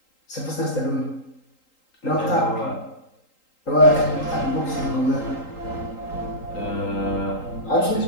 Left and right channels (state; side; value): late; right; 3.8 ms